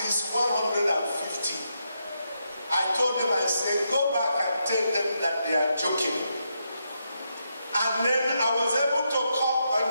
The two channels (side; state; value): both; inverted; correlation -0.82